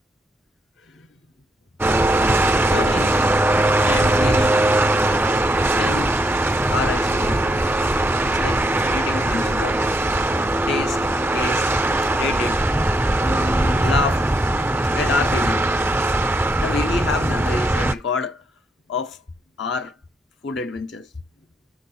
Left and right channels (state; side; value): normal; both; correlation 0.76